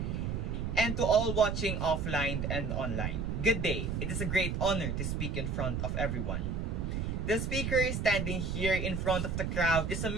and to all watching offline and online, good day. It is a great honor to speak in front of everyone. The speaker standing here in front of the crowd is a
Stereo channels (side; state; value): right; noise; rumble, 1 dB below the sound